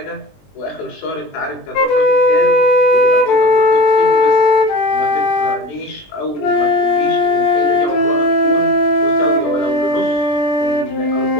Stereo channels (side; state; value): right; late; 20 ms